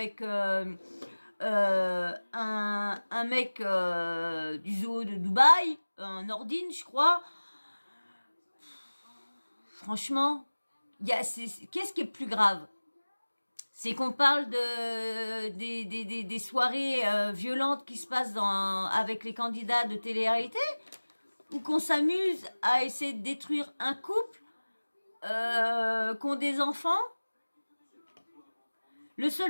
un mec du zoo de Dubaï, un Nordine je crois. Franchement, qu'est-ce qui est plus grave? C'est qu'on parle des soirées violentes qui se passent avec les candidats de télé-réalité, ou qu'on s'amuse à essayer de détruire un couple qui ont des enfants. Le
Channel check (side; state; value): both; inverted; correlation -1.00